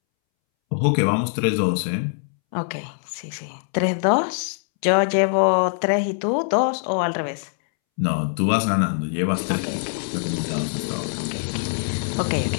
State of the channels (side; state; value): right; silent; 63 dB below the other